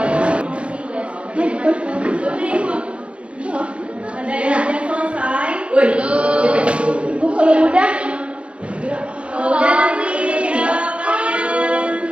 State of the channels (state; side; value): late; left; 0.059 ms